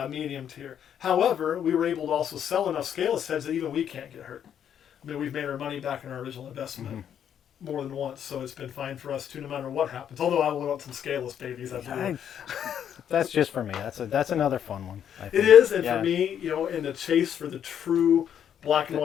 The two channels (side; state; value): right; quieter; 9.1 dB